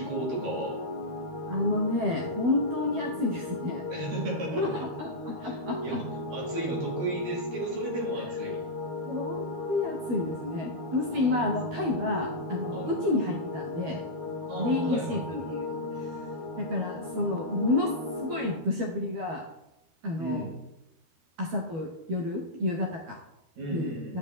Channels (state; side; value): late; left; 12 ms